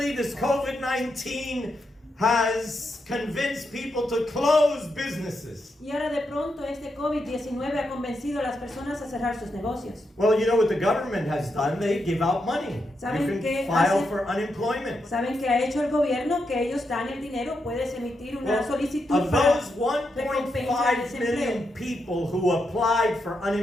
this COVID-19 has convinced people to close businesses. Y ahora de pronto este COVID-19 ha convencido a las personas a cerrar sus negocios. Well, you know what the government has done? They give out money. ¿Saben You qué can file hace? for unemployment. ¿Saben qué ha hecho el gobierno? Que ellos dan el dinero, puedes emitir una Well, solicitud of para those recompensar 1.5 desempleo. million people who applied for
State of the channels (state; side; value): normal; both; correlation 0.84